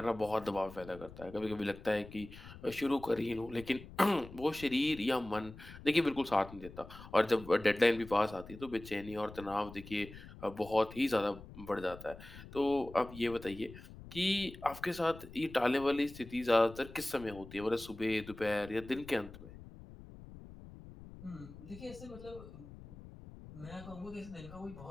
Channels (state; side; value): noise; left; rumble, 16 dB below the sound